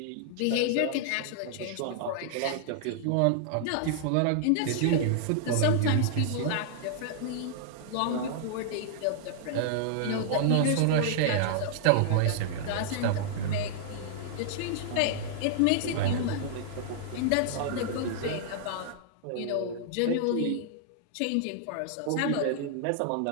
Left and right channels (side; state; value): both; different; correlation -0.01